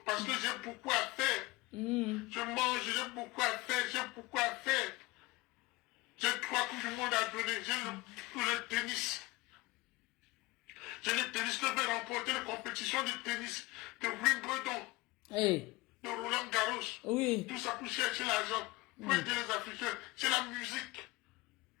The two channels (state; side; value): quieter; right; 21.4 dB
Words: parce que j'ai beaucoup à faire. Je mange, j'ai beaucoup à faire, j'ai beaucoup à faire. J'ai 3 coups du monde à donner. J'ai le tennis. J'ai le tennis que je vais remporter la compétition de tennis de Wimbledon, de Roland Garros. Oui. Tout ça pour chercher l'argent, pour aider les Africains. C'est la musique.